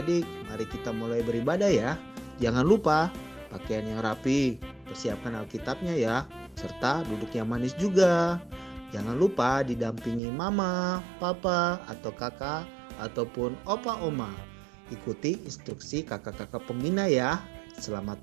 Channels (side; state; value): left; drops out; at 10.2 s